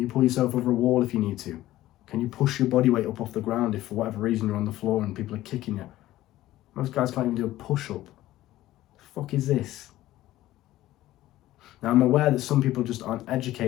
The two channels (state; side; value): quieter; right; 15.3 dB